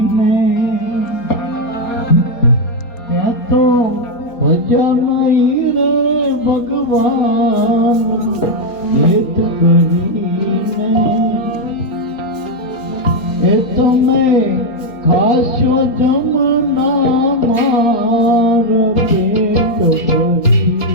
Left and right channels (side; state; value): right; late; 4.3 ms